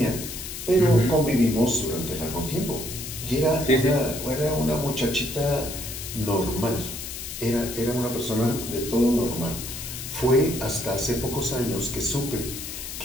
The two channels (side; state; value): left; noise; hiss, 8 dB below the sound